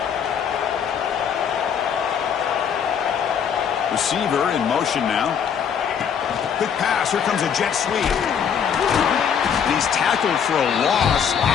Receiver in motion now. Quick pass. Here comes a jet sweep. And he's tackled for a loss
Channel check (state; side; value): quieter; right; 7.6 dB